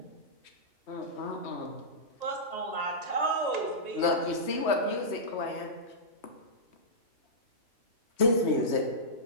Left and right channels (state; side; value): late; right; 3.2 ms